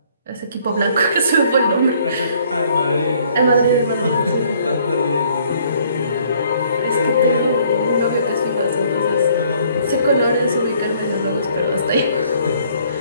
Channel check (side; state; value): both; inverted; correlation -0.62